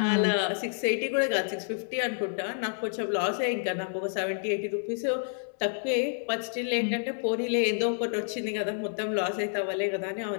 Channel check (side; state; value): right; silent; 59 dB below the other